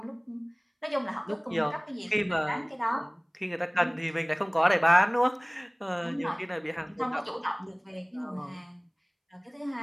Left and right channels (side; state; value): both; identical; correlation 1.00